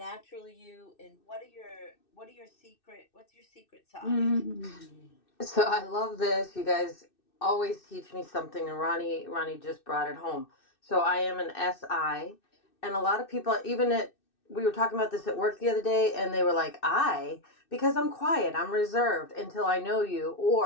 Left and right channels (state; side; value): late; right; 2.6 ms